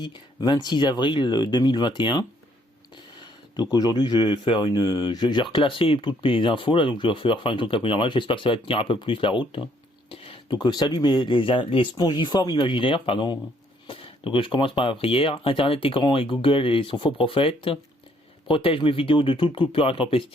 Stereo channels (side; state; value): both; normal; correlation 0.67